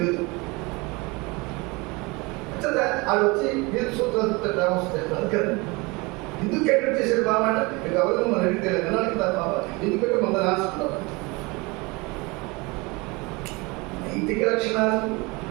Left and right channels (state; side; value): quieter; left; 25.8 dB